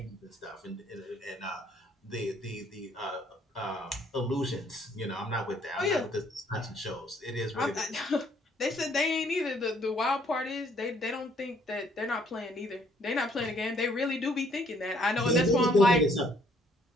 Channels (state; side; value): normal; both; correlation 0.65